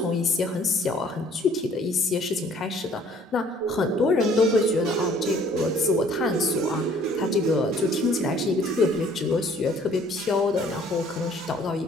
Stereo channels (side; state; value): both; normal; correlation 0.57